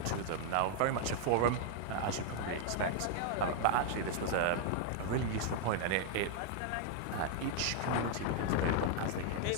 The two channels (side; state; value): both; different; correlation 0.00